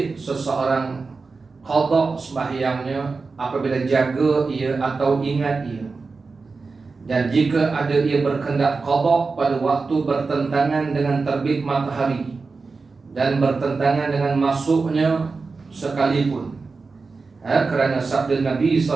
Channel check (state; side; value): quieter; left; 4.3 dB